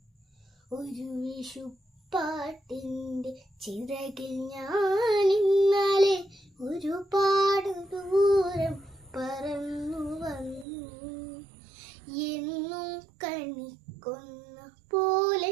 ഒരു വിഷുപ്പാട്ടിൻ്റെ ചിറകിൽ ഞാനിന്നലെ ഒരുപാട് ദൂരം പറന്നു വന്നു. എന്നും കണിക്കുന്ന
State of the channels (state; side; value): drops out; left; at 10.7 s